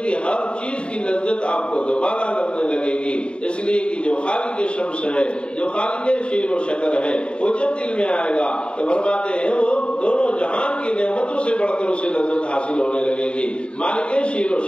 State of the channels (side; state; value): right; late; 0.054 ms